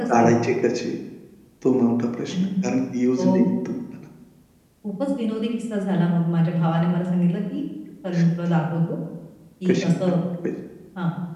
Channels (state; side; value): identical; both; correlation 1.00